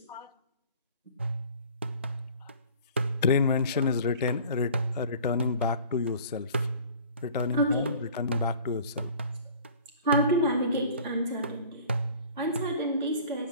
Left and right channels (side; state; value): both; inverted; correlation -0.47